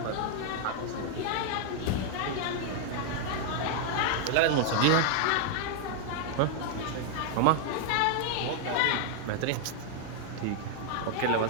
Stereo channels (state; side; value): different; both; correlation 0.00